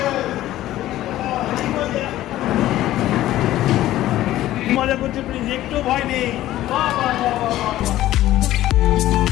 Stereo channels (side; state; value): right; quieter; 14.4 dB